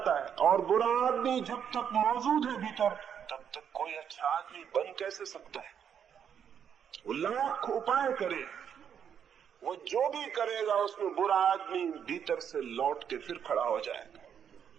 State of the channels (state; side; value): quieter; left; 8.2 dB